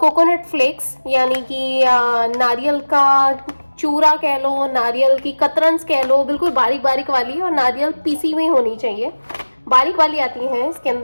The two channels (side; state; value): both; inverted; correlation -1.00